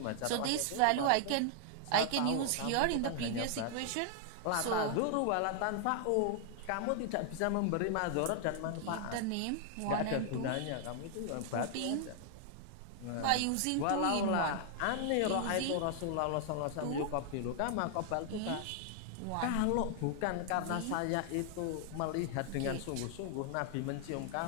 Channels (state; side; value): different; both; correlation 0.00